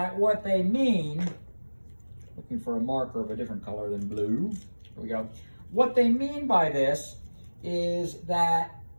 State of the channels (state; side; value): inverted; both; correlation -1.00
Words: what they mean, looking for a marker of a different color than blue, here we go. What they mean by this is that